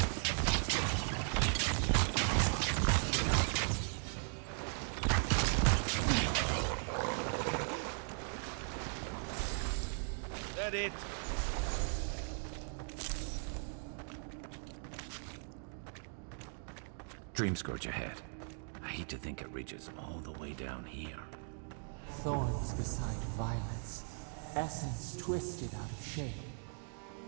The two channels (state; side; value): silent; left; 52 dB below the other